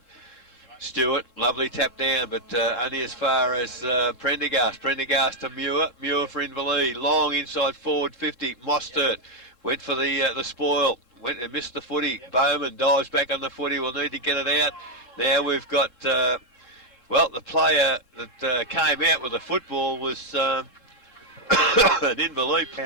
Stewart, lovely tap down, but only as far as Prendergast. Prendergast to Muir. Muir for Inverleigh. Long inside forward 50. Mostert went for the spoil. Went and missed the footy. Bowman dives back on the footy. We'll need to get it out. Now we've got, well, the player that came out with the football was an Inverleigh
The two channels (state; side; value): late; left; 3.7 ms